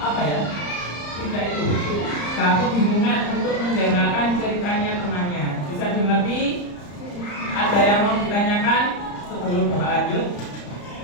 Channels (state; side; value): late; right; 34 ms